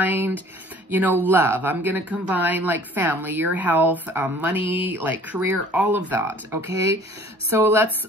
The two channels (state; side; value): normal; both; correlation 0.51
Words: you know, love. I'm going to combine like family, your health, money, like career, all of that. Okay, so